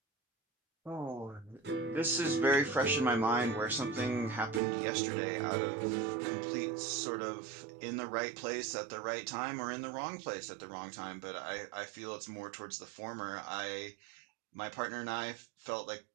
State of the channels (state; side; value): drops out; left; at 4.6 s